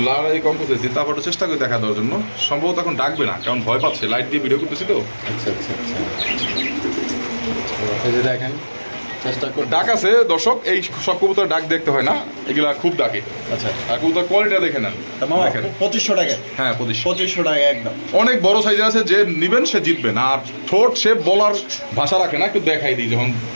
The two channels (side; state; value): both; inverted; correlation -1.00